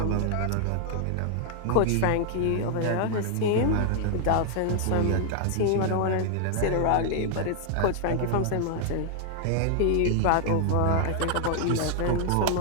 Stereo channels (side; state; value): both; different; correlation 0.00